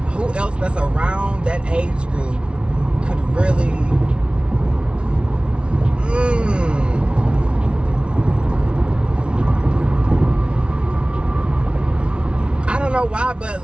Who else that's around that age group could really I don't know why, but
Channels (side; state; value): left; late; 0.058 ms